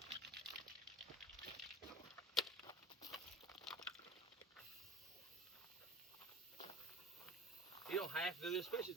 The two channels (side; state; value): both; normal; correlation 0.40